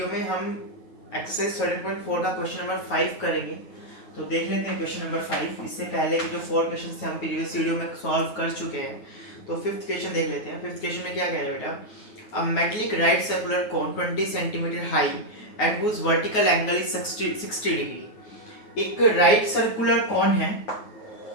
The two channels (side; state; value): right; late; 9.4 ms